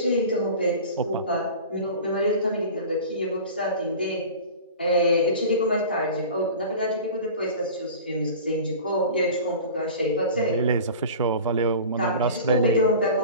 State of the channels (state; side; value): inverted; both; correlation -0.38